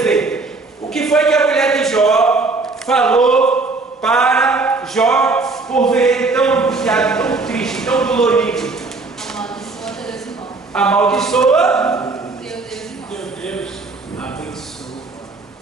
o que foi que a mulher de Jó falou para Jó por ver ele tão angustiado, tão triste, tão dolorido. Amaldiçoa Deus e morre. Amaldiçoa Deus Abençoa.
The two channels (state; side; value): quieter; left; 3.7 dB